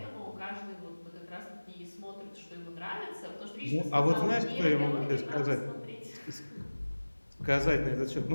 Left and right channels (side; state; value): both; inverted; correlation -1.00